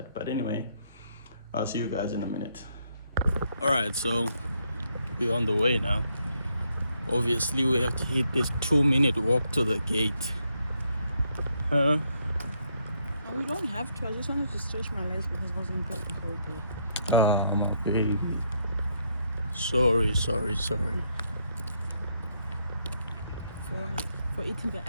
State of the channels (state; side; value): inverted; both; correlation -0.75